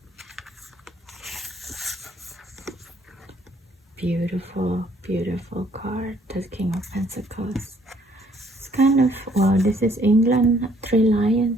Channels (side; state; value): both; normal; correlation 0.63